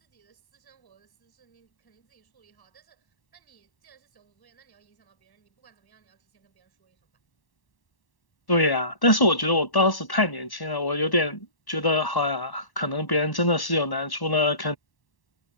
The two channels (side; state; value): right; late; 1.1 ms